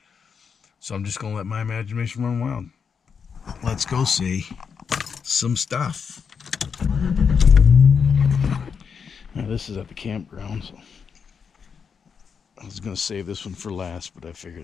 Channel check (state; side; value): quieter; right; 6.3 dB